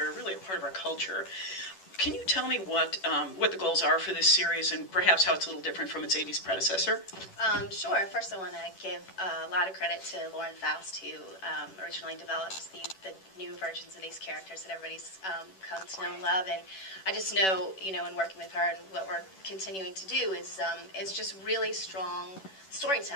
really a part of our culture. Can you tell me what the goals are for this series and perhaps how it's a little different from its 80s predecessor? Sure. First, I want to give a lot of credit to Lauren Faust, who originally developed the new versions of these characters that everybody's come to know and love. And I just know, in working with her and what we're continuing to do is just really strong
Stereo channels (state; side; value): late; right; 11 ms